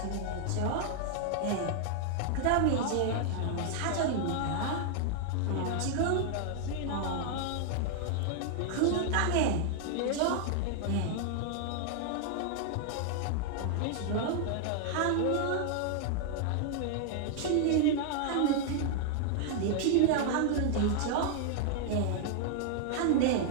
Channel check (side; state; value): both; different; correlation 0.00